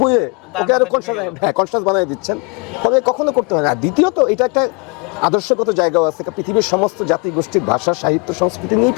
বইয়ে তার ওকে আরো মাথায় ঢুকে গেল। কনসাস বানিয়ে দিচ্ছেন, তবে কখনো করতে হয় না। আর দ্বিতীয়ত এটা একটা আদর্শগত জায়গাও আছে, পৃথিবীর সমস্ত জাতি গোষ্ঠীর ভাষা, সাহিত্য, সংস্কৃতি নিয়েই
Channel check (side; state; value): right; quieter; 31.2 dB